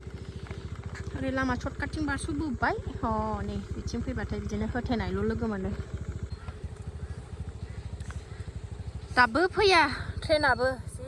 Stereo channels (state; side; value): identical; both; correlation 1.00